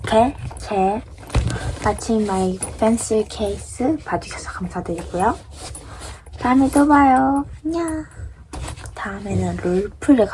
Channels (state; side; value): identical; both; correlation 1.00